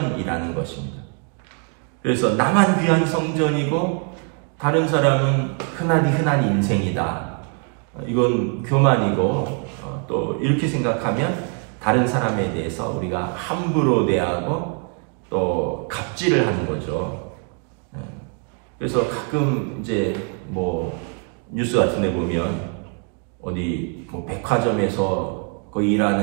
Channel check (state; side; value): quieter; left; 39.8 dB